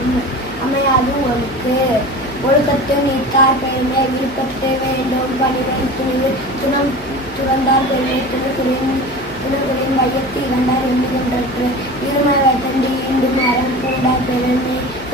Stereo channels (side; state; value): left; noise; hum, 20 dB below the sound